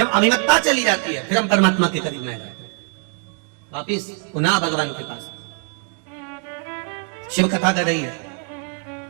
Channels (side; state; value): left; quieter; 36.8 dB